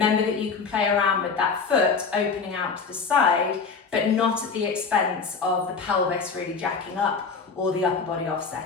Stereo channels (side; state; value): right; quieter; 5.1 dB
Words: that you can play around with that foot opening out to the side, but not at the expense of the pelvis really jacking up or the upper body